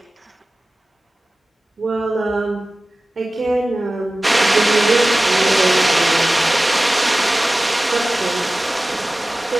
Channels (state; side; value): normal; both; correlation 0.97